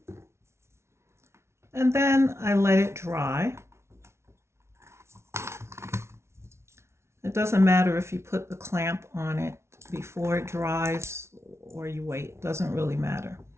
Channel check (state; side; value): late; left; 0.13 ms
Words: And then I let it dry. It doesn't matter if you put the clamp on it before it dries or you wait, it doesn't really matter.